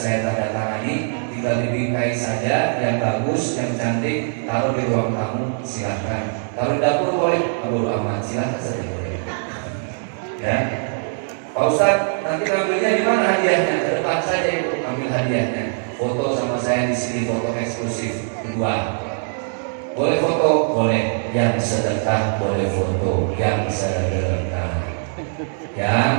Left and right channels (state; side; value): silent; left; digital silence